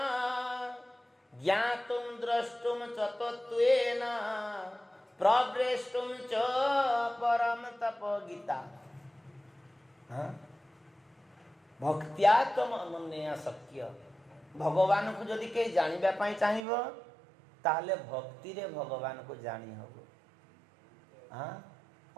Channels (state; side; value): drops out; left; at 16.6 s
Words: ज्ञातुम द्रष्टुम च तत्त्वेन प्रवेष्टुम च परम तप गीता। हाँ? भक्त्या तम अनन्या शक्य, भगवान को जदि कहीं जानिबा पाई चाहिबो ताहले भक्ति रे भगवान को जानी हबो। हाँ